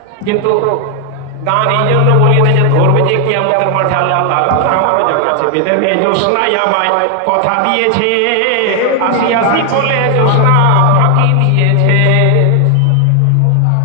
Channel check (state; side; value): different; both; correlation 0.00